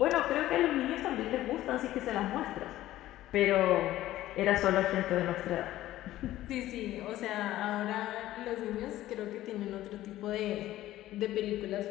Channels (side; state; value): right; quieter; 14.7 dB